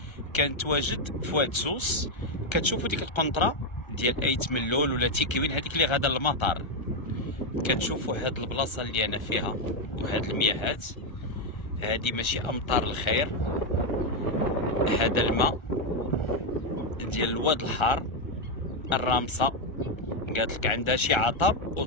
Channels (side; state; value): right; late; 1.3 ms